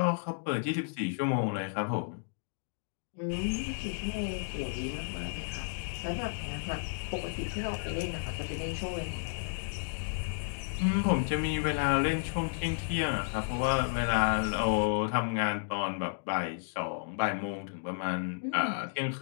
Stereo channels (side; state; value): right; silent; digital silence